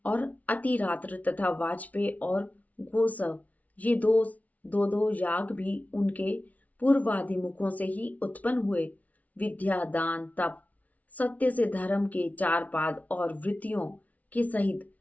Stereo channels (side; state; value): right; late; 0.070 ms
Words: और अतिरात्र तथा वाजपेय और गोसव, ये दो याग भी उनके पूर्वादि मुखों से ही उत्पन्न हुए। विद्या, दान, तप, सत्य से धर्म के चार पाद और वृत्तियों के सहित